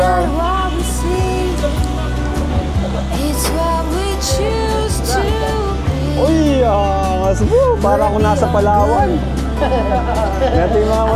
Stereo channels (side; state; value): both; identical; correlation 1.00